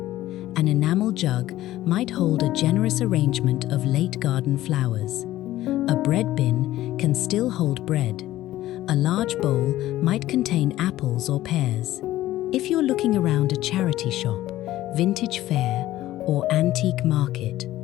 An enamel jug might hold a generous arrangement of late garden flowers. A bread bin can still hold bread. A large bowl might contain apples or pears. If you're looking around a charity shop, vintage fair, or antique market,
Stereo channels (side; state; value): right; quieter; 15.0 dB